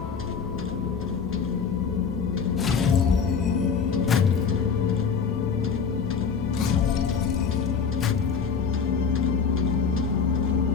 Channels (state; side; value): quieter; right; 6.1 dB